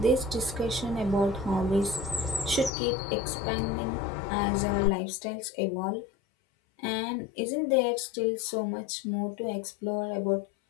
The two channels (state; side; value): drops out; right; at 2.7 s